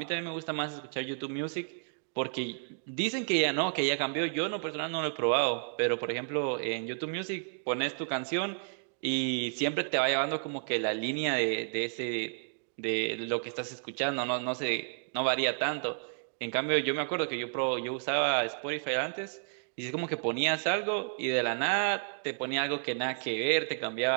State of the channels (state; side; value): silent; left; digital silence